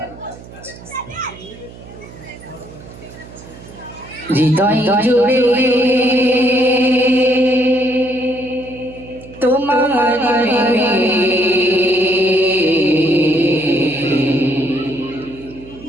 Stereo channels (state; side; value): noise; right; hum, 18 dB below the sound